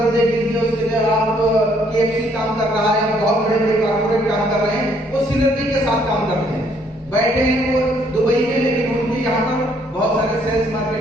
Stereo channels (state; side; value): normal; both; correlation 0.66